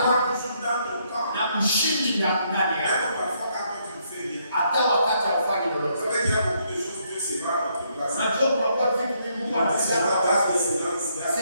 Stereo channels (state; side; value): inverted; both; correlation -0.73